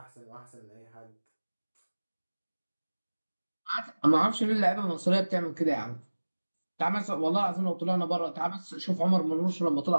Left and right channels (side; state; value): both; inverted; correlation -1.00